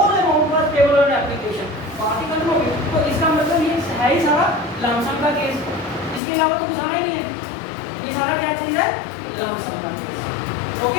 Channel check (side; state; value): right; drops out; at 6.2 s